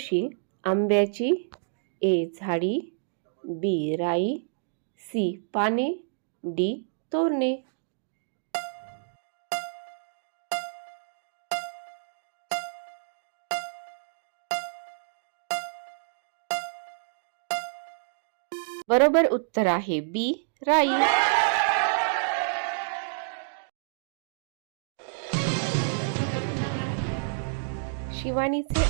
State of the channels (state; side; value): silent; left; digital silence